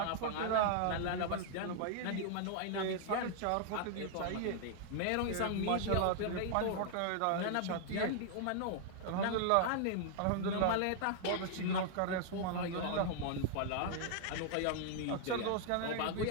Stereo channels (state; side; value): different; both; correlation 0.00